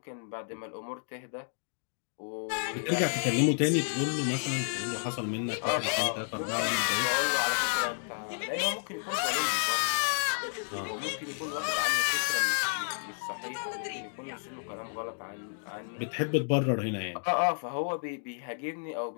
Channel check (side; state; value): right; silent; digital silence